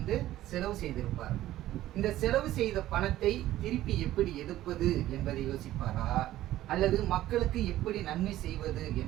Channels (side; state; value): left; quieter; 14.4 dB